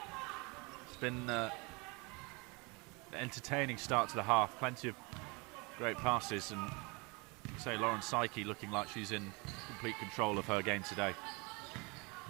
It's been an entertaining start to the half. Plenty of great passes, and say, Lauren Psyche looking like she's in complete control of her game today.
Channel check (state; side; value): quieter; left; 28.4 dB